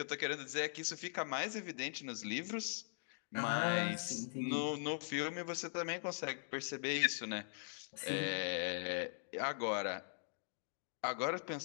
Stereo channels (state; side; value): silent; right; digital silence